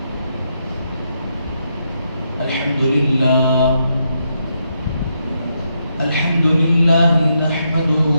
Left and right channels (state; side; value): inverted; both; correlation -0.80